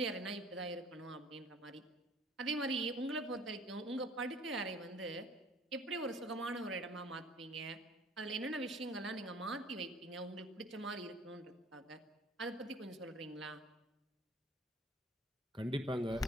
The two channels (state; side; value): normal; both; correlation 0.52